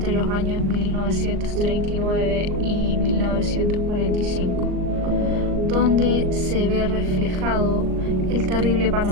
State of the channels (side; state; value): left; late; 38 ms